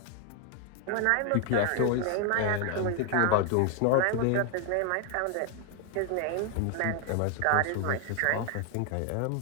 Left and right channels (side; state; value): both; different; correlation 0.00